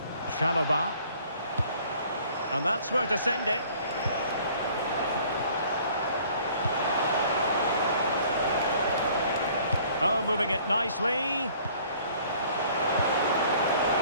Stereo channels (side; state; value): both; inverted; correlation -0.55